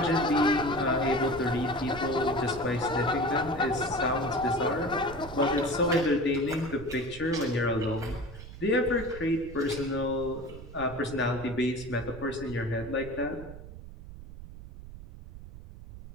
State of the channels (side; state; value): right; noise; rumble, 14 dB below the sound